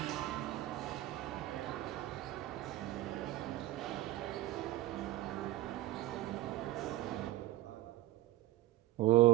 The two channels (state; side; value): quieter; left; 16.2 dB